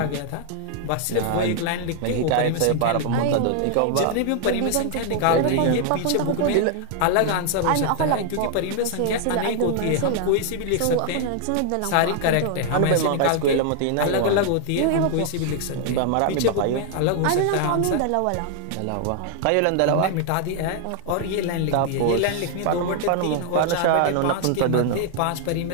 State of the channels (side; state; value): both; different; correlation 0.00